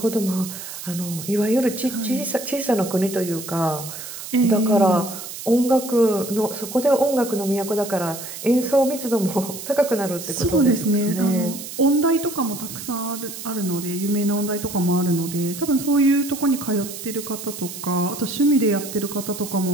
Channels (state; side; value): noise; right; hiss, 10 dB below the sound